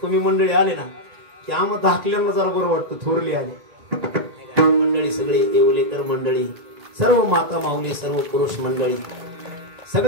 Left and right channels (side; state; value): left; late; 1.9 ms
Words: तुम्ही मंडळी आले ना की आम्हाला धाकल्याला जरा बरं वाटतं. थोरले आले मंडळी, सगळे येवलेकर मंडळी, सर्व माता माऊली, सर्व पुरुष मंडळी,